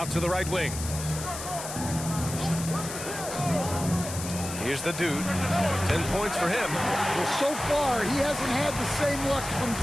to the right wing. Here's the dude. 10 points for him. Well, so far, he hasn't had the same luck from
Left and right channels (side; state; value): left; noise; hiss, 8 dB below the sound